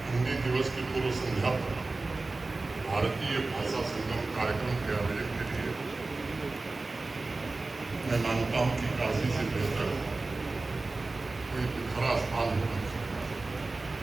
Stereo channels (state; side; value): quieter; left; 3.4 dB